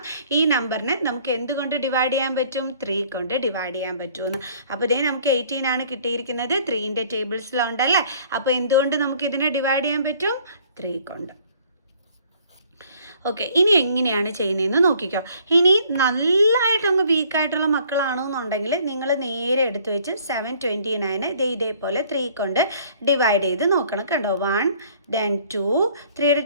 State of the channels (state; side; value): inverted; both; correlation -0.58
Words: ഈ നമ്പറിനെ നമുക്ക് എന്തുകൊണ്ട് ഡിവൈഡ് ചെയ്യാൻ പറ്റും? 3 കൊണ്ട് ഡിവൈഡ് ചെയ്യാൻ പറ്റുമെന്ന്. അപ്പോൾ ഇതേ നമുക്ക് 18 ആണ് കിട്ടിയിരിക്കുന്നത്. 3ൻ്റെ ടേബിൾസിലുണ്ടല്ലേ. അപ്പോൾ എന്തുകൊണ്ട് നമുക്ക് ഇതിനെ ഡിവൈഡ് ചെയ്യാൻ പറ്റും? 3 കൊണ്ട്. ഓക്കെ, ഇനി എങ്ങനെയാണ് ചെയ്യുന്നതെന്ന് നോക്കിക്കോ. ഇനി നല്ലതായിട്ടങ്ങ് വീക്കായിട്ടുള്ള മക്കളാണെന്നുണ്ടെങ്കിൽ നിങ്ങൾ നേരെ എടുത്ത് വെച്ച് 729 ഇതേപോലെ 3 കൊണ്ട് ഡിവൈഡ് ചെയ്ത് നോക്കണം. കണ്ടോ? 1 then 2. 3യുടെ